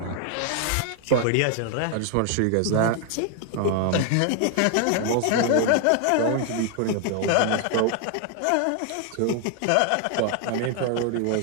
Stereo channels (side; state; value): both; different; correlation 0.00